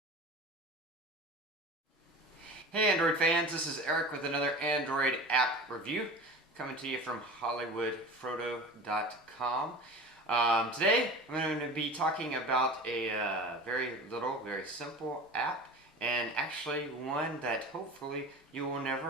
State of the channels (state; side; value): normal; both; correlation 0.35